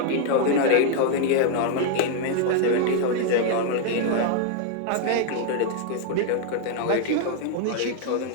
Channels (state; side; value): different; both; correlation 0.00